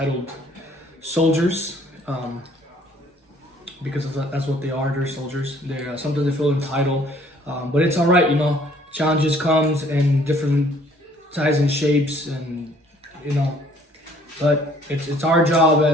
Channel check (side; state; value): both; normal; correlation 0.59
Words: soldiers. Because that's what they are. They're soldiers. They're sometimes they feel entitled, but it's all right. Challenges comes in different sizes and shapes, and but it's our job